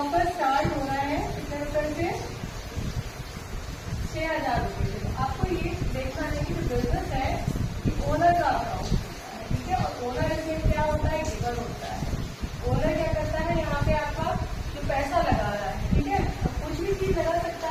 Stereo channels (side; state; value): both; identical; correlation 1.00